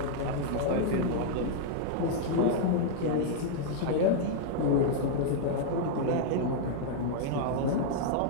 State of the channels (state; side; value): different; both; correlation -0.01